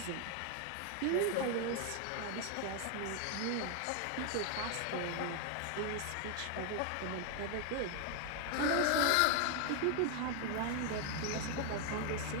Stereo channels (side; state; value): both; different; correlation 0.00